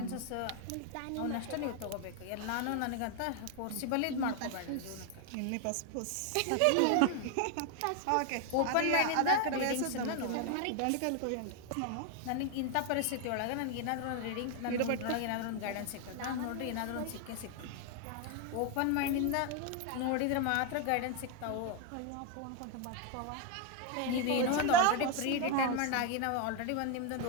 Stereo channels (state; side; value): different; both; correlation 0.01